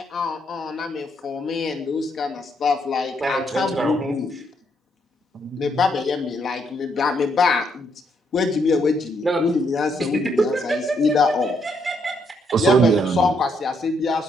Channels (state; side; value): normal; both; correlation 0.74